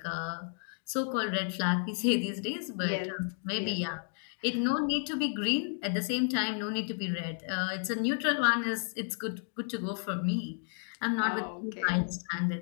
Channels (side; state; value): right; silent; 55 dB below the other